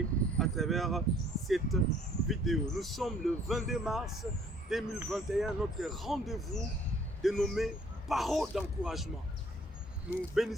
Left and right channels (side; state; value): both; normal; correlation 0.58